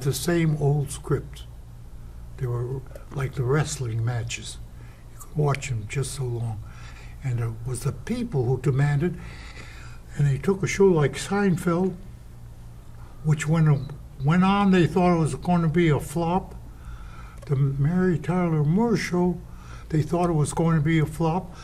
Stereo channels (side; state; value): both; identical; correlation 1.00